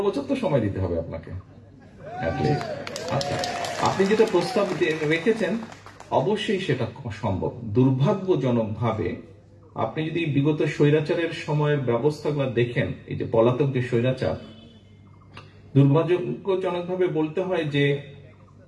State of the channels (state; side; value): identical; both; correlation 1.00